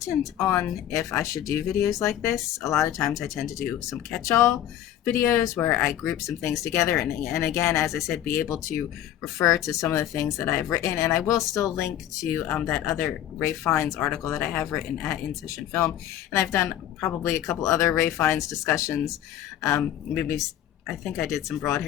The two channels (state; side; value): quieter; right; 11.5 dB